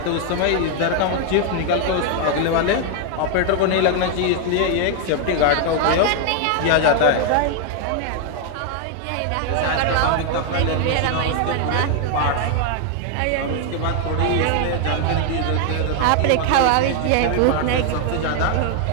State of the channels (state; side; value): different; both; correlation 0.00